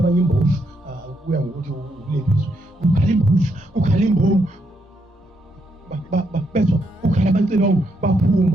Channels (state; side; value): normal; both; correlation 0.78